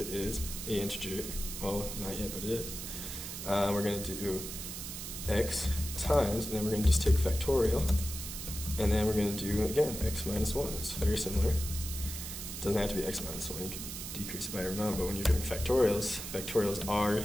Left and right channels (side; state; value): right; noise; hiss, 7 dB below the sound